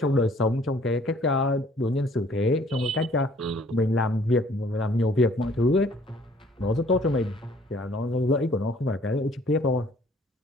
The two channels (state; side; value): normal; both; correlation 0.58